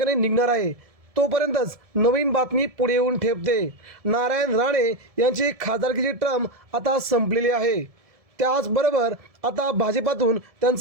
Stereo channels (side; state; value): left; late; 1.7 ms